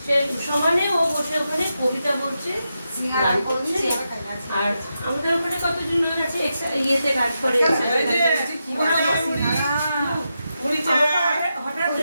সে সমানে ও বসে ওখানে কবিতা বলছে গান করছে আর আমাদের ওখানে কতজন লোক আছে ইয়েতে কাজ করে হঠাৎ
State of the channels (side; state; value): both; inverted; correlation -0.87